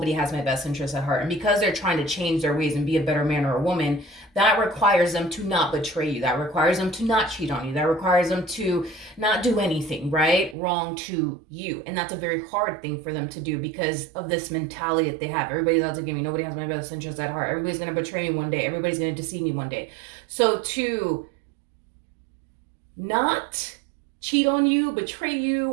has my best interest at heart. And because they're trying to change their ways and be a better man or a woman, that requires them to not betray you. That requires them to not cheat on you. That requires them to not do anything, right, wrong to you. And that's a very hard thing for them to do because of this mentality that they have. Everybody's out to get me, nobody has my best interest at heart. Everybody's going to betray me one day. Everybody's going to deceive me one day. So to not cheat on you, betray you,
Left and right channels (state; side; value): drops out; left; at 10.6 s